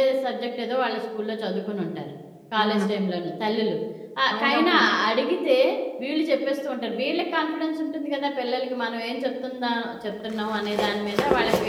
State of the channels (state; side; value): identical; both; correlation 1.00